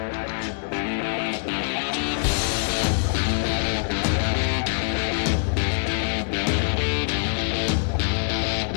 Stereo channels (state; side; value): silent; right; digital silence